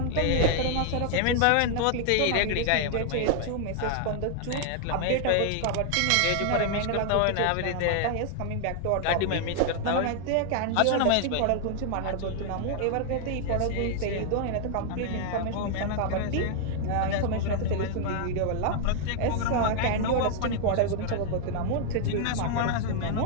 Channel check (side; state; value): both; different; correlation 0.00